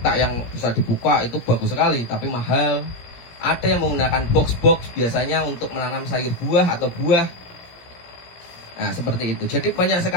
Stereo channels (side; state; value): right; late; 17 ms